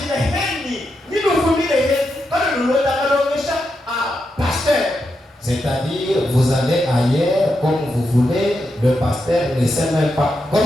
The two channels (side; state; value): both; normal; correlation 0.85